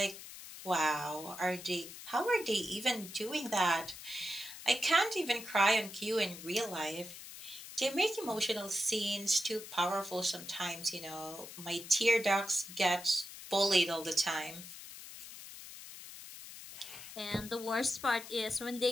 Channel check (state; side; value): noise; left; hiss, 13 dB below the sound